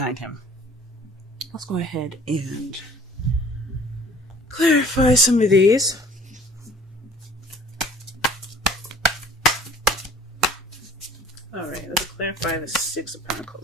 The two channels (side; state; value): both; normal; correlation 0.50